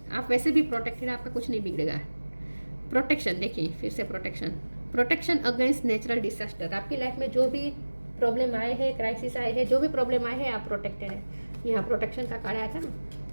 आप वैसे भी प्रोटेक्टेड, आपका कुछ नहीं बिगड़ेगा। प्रोटेक्शन देखिए, फिर से प्रोटेक्शन अगेंस्ट नेचुरल डिजास्टर। आपकी लाइफ में जो भी प्रॉब्लम आए हैं, क्राइसिस आए हैं, जो भी प्रॉब्लम आए हैं, आप प्रोटेक्टेड है। यहाँ प्रोटेक्शन का कार्ड आया था ना,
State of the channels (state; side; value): inverted; both; correlation -1.00